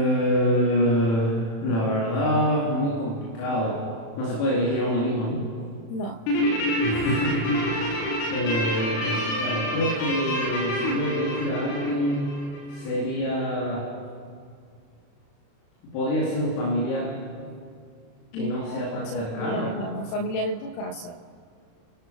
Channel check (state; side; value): late; right; 35 ms